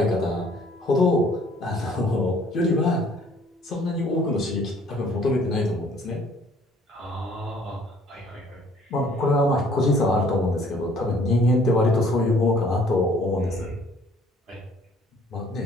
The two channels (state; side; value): normal; both; correlation 0.58